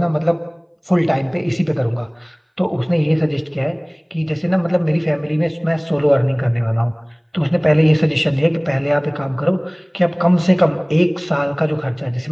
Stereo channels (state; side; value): identical; both; correlation 1.00